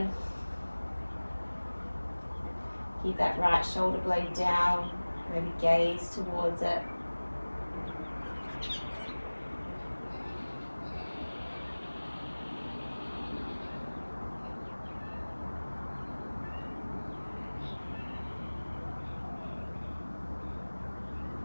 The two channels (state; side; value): inverted; both; correlation -1.00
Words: Keep that right shoulder blade down. Maybe gaze towards it.